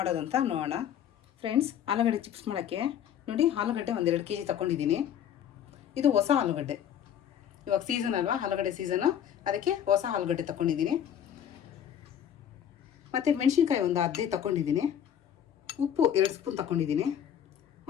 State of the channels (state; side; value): quieter; right; 9.5 dB